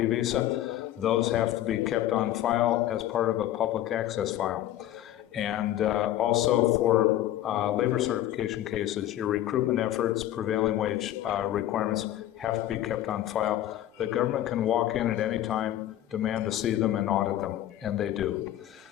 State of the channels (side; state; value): right; quieter; 13.0 dB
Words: visa? Those have to be kept on file as part of a public access file. And also for labor certification cases, your recruitment efforts, prevailing wage requirements have to be kept on file. The government can walk in at any time, demand to see them, and audit them, and they do.